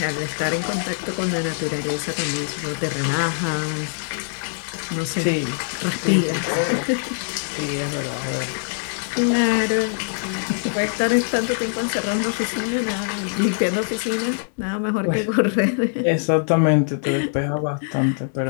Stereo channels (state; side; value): silent; right; 64 dB below the other